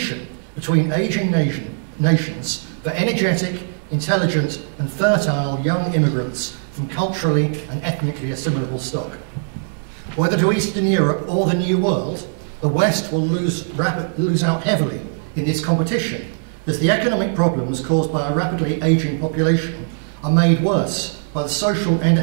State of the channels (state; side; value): silent; left; digital silence